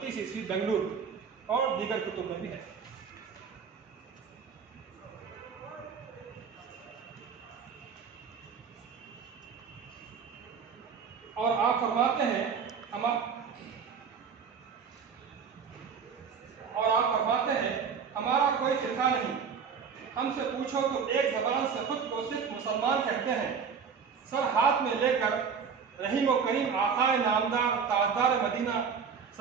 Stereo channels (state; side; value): quieter; left; 6.4 dB